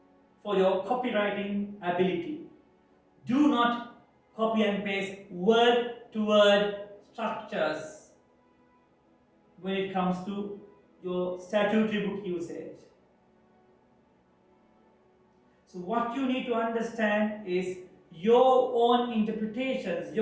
for your copywriting ability. Do not copy and paste word to word structures when it comes to your statutory book usage. So what you need to understand is your own interpretations,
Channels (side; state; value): both; identical; correlation 1.00